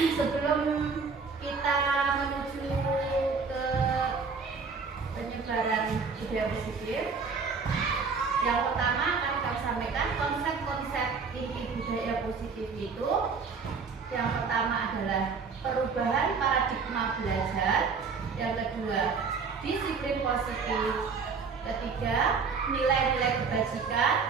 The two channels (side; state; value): left; quieter; 5.1 dB